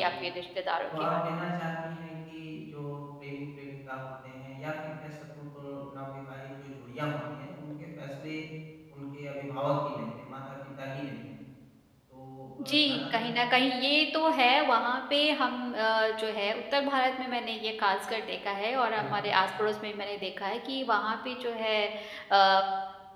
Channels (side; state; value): both; identical; correlation 1.00